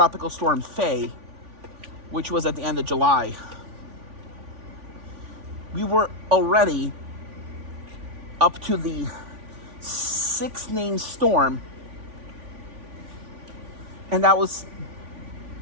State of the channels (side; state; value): left; late; 3.5 ms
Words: Storm Faye, which was at the end of July. We were already up to the 6th named storm, and that was